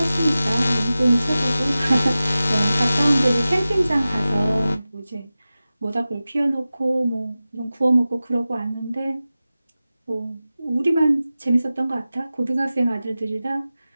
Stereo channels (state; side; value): inverted; both; correlation -0.95